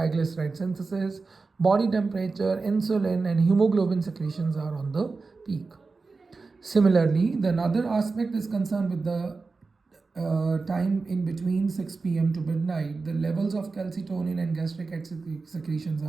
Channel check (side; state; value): left; quieter; 4.1 dB